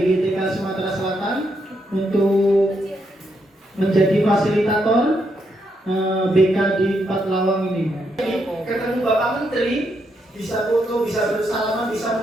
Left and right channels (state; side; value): normal; both; correlation 0.79